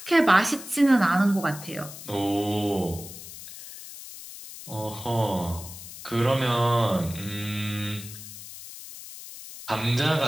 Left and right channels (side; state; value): left; noise; hiss, 13 dB below the sound